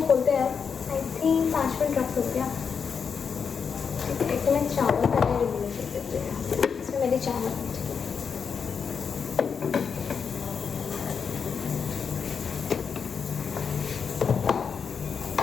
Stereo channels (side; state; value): right; quieter; 6.2 dB